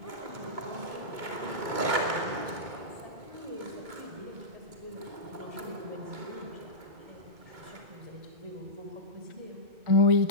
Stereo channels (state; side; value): late; left; 2.2 ms